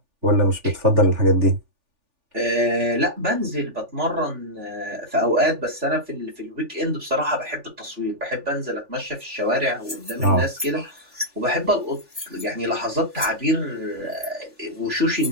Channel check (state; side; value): late; left; 3.4 ms